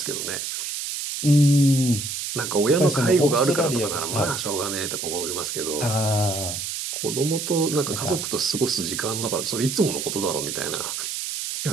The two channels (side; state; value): right; noise; hiss, 4 dB below the sound